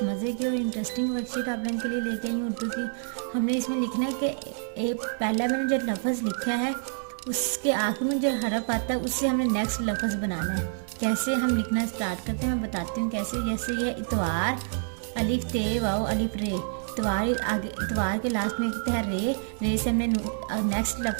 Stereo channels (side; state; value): left; silent; 55 dB below the other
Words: मज़े की और इंटरेस्टिंग वर्कशीट आप लोगों के लिए लेके आई हूँ उर्दू की। हमने इसमें लिखना है कि एक पहला मैंने जो लफ्ज़ लिखा है उसके आखिर में जो हरफ आता है उससे हमने नेक्स्ट लफ्ज़ बनाना है। कैसे हम लिखना स्टार्ट करते हैं मैं बताती हूँ कैसे। जैसे ये इतवार, अलिफ ते वाओ अलिफ रे। इतवार आगे, इतवार के लास्ट में लिखते हैं रे। रे से हमने नेक्स्ट